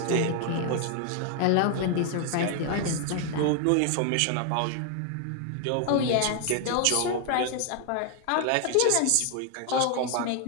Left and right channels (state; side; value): different; both; correlation 0.00